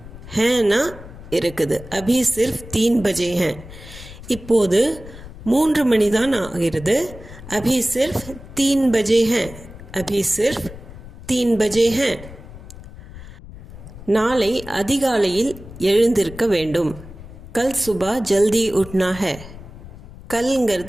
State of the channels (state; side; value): noise; left; rumble, 16 dB below the sound